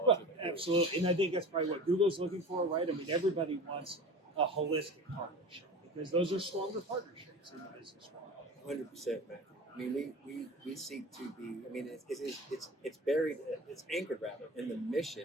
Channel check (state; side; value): normal; both; correlation 0.35